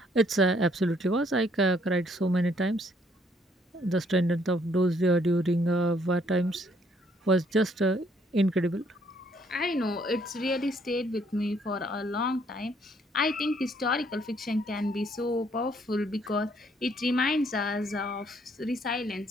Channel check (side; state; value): both; normal; correlation 0.67